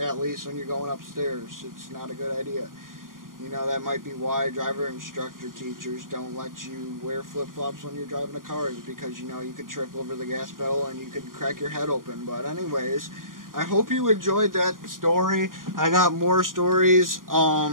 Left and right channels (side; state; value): left; late; 0.90 ms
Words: least when you're going upstairs. It's not a good idea. You know, that might be why driver instructor teachers don't let you wear flip-flops when you're driving a car, is because, you know, you could trip over the gas pedal and you could crack your head open. But anyways, I hope you enjoyed that story. I got more stories.